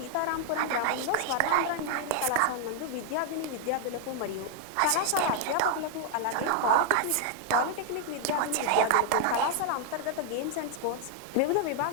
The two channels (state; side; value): different; both; correlation 0.00